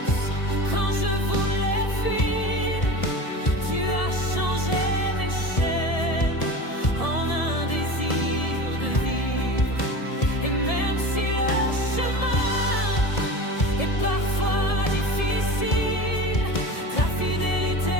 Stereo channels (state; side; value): late; right; 1.7 ms